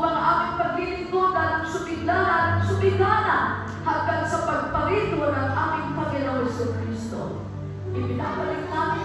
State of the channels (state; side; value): identical; both; correlation 1.00